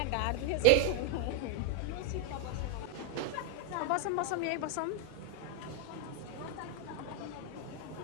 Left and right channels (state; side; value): different; both; correlation 0.00